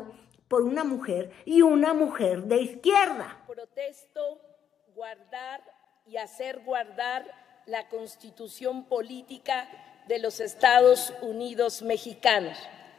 por una mujer y una mujer de izquierda. Protesto guardar y hacer guardar la Constitución política de los Estados Unidos mexicanos,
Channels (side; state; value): right; quieter; 8.9 dB